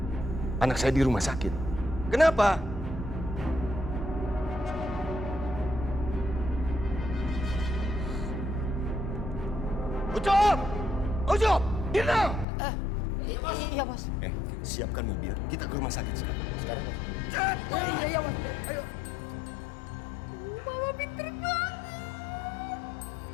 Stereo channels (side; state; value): right; drops out; at 12.5 s